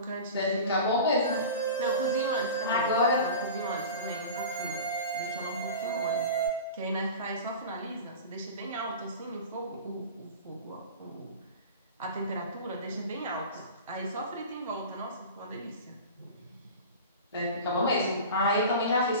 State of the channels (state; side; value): inverted; both; correlation -0.34